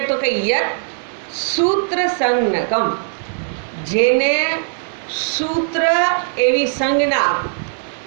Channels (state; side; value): silent; left; digital silence